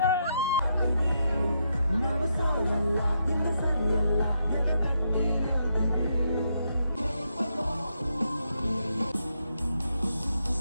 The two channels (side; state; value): both; inverted; correlation -0.80